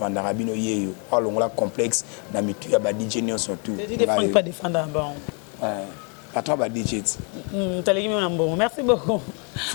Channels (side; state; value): right; quieter; 37.7 dB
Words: Rabino Yeyo ou longola complexe na mitu ya ba DJ nyo surtout pas défendre bon patron ba DJ merci beaucoup